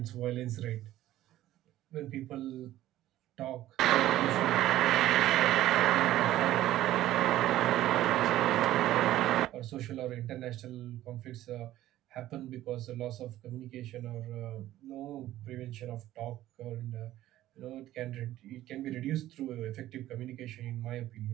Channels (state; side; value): quieter; left; 14.2 dB